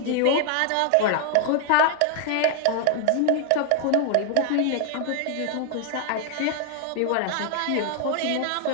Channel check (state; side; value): different; both; correlation 0.00